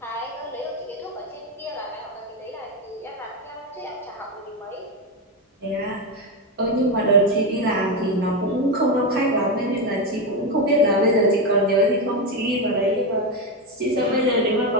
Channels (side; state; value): both; normal; correlation 0.11